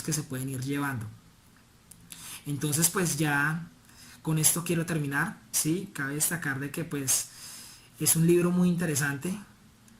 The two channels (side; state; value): both; identical; correlation 1.00